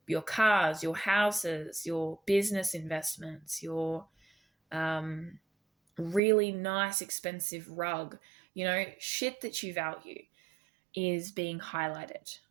cars, your houses, your business investments, your really nice expensive rug, shit that you value is being highlighted.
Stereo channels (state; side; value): drops out; left; at 6.2 s